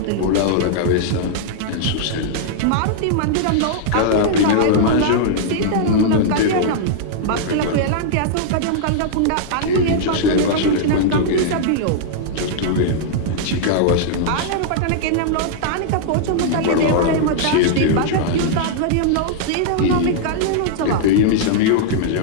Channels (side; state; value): both; different; correlation -0.01